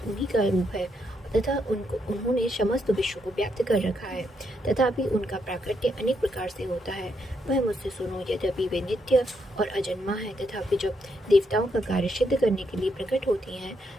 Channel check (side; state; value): both; normal; correlation 0.78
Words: उन्हीं का रूप है तथा उन्होंने समस्त विश्व को व्याप्त कर रखा है, तथापि उनका प्राकट्य अनेक प्रकार से होता है। वह मुझसे सुनो। यद्यपि वे नित्य और अजन्मा है, तथापि जब देवताओं का कार्य सिद्ध करने के लिए प्रकट होती हैं,